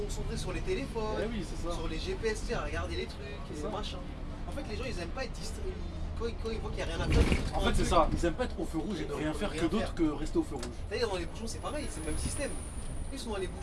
sur les téléphones, Eh oui, c'est ça. sur les GPS, tu sais, à regarder les trucs, C'est et ça. machin. En fait, les gens, ils aiment pas être distraits. Quand ils voient qu'il n'y a rien à faire, ils En prennent fait, un c'est truc. ça, ils aiment pas être au feu rouge et ne rien faire que d'autre que rester au feu rouge. D'ailleurs, dans les bouchons, c'est pareil, c'est le même système. Ils sont dans les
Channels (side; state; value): both; identical; correlation 1.00